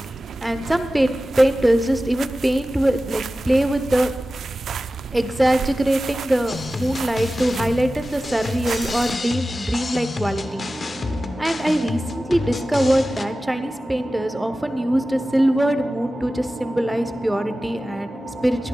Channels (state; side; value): normal; both; correlation 0.95